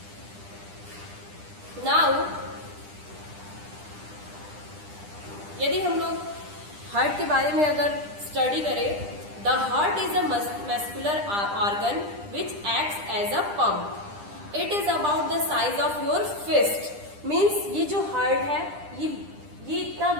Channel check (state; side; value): late; left; 9.9 ms